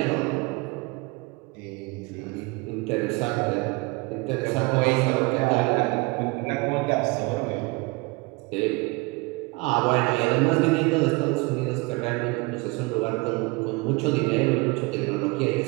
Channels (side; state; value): left; quieter; 26.1 dB